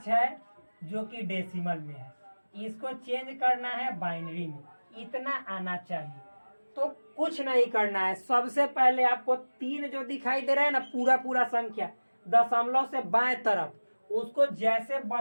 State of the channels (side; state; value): both; inverted; correlation -1.00